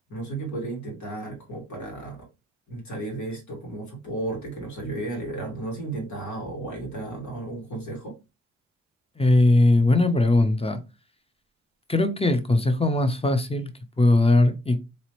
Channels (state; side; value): normal; both; correlation 0.81